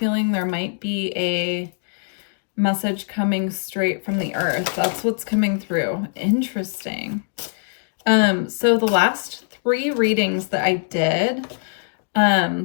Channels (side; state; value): right; silent; digital silence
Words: there might be a message coming straight from the Earth. That's what's coming through. Interesting. So the last 3 readings that I did,